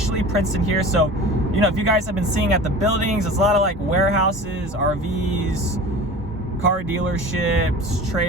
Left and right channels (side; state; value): both; normal; correlation 0.37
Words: Princeton here. So, you know, if you guys have been seeing at the buildings, it's a lot of like warehouses, RVs, car dealerships,